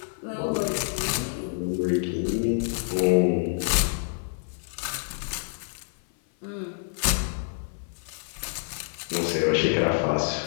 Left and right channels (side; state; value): right; silent; 57 dB below the other